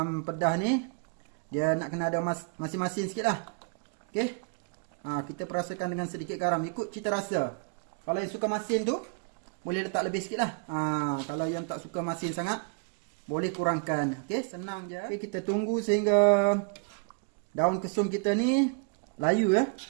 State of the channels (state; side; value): quieter; left; 37.3 dB